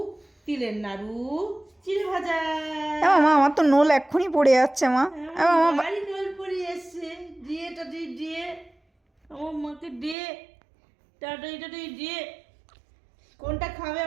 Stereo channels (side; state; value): left; drops out; at 10.2 s